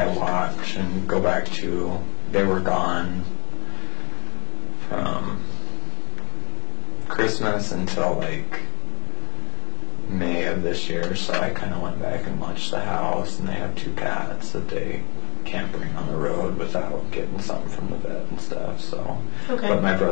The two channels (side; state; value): right; quieter; 34.7 dB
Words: watch and go back to. They were gone from Christmas until like May of this year, so I kind of went back and watched the house, and they have 2 cats that they can't bring on the road without getting something from the vet and stuff, so. Okay. But my